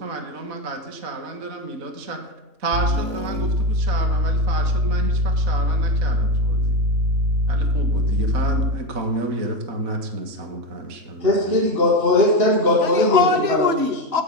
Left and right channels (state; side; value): late; left; 3.4 ms